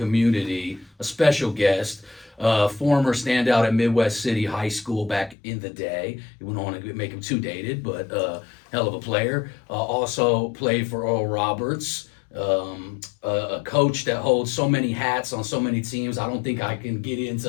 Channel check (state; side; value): drops out; right; at 5.4 s